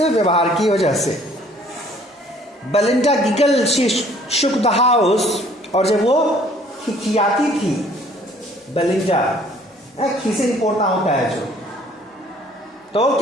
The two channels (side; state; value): both; normal; correlation 0.57